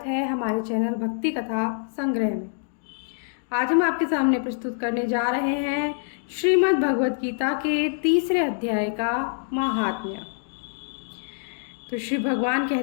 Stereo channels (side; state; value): right; silent; digital silence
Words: है हमारे चैनल भक्ति कथा संग्रह में। आज हम आपके सामने प्रस्तुत करने जा रहे हैं श्रीमद् भगवत गीता के तीसरे अध्याय का महात्म्य। तो श्री भगवान